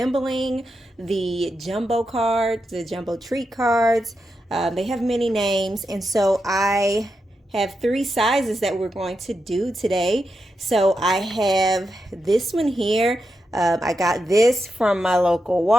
the jumbo cards, the jumbo treat cards. They have many names, and so I have three sizes that we're going to do today. So I have this one here. I got this from my local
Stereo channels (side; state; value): both; normal; correlation 0.87